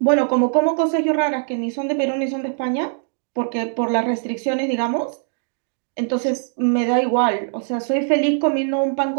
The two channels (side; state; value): left; silent; 65 dB below the other